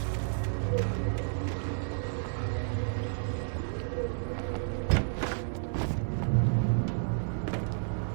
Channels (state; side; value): silent; left; digital silence